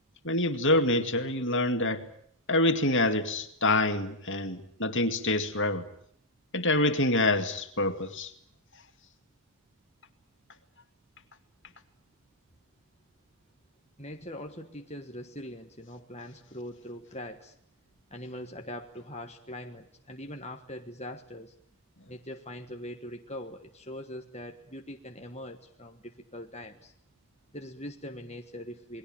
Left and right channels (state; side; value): normal; both; correlation -0.05